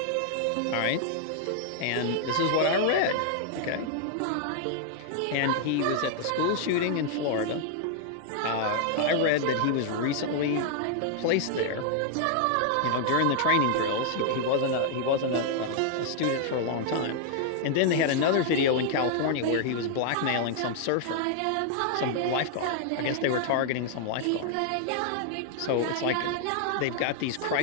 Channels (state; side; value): different; both; correlation -0.01